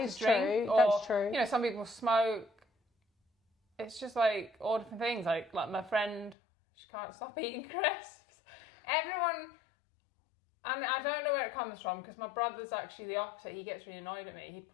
is drink. True. Or, that's true. You know, some people smoke. It's just like all different things. Like my friend, she can't stop eating crisps. Everyone. And I don't know where it comes from because my brother's actually the opposite. He gets really annoyed at me. He'd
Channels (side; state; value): right; drops out; at 6.4 s